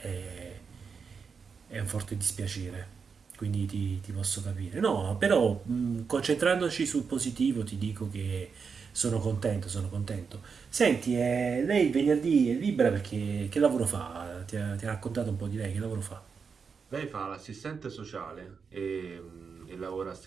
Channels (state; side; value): quieter; left; 5.7 dB